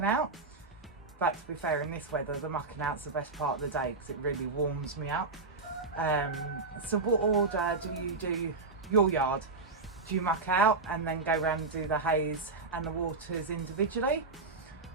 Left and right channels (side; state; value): left; quieter; 3.9 dB